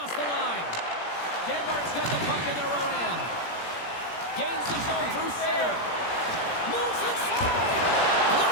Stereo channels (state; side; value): late; right; 17 ms